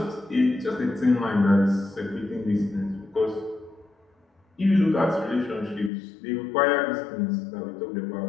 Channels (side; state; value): right; drops out; at 5.9 s